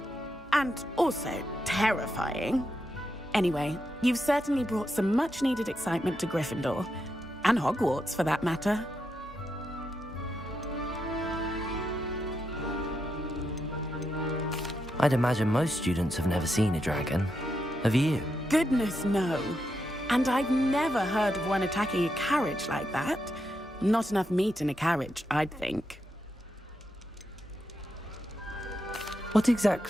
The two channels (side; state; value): both; normal; correlation 0.84